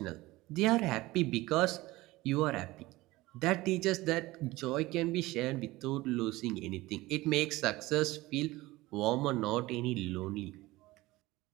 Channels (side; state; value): left; quieter; 19.4 dB